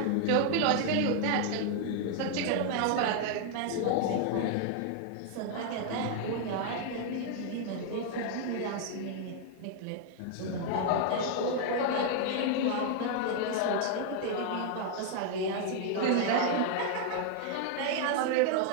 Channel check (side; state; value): both; different; correlation 0.00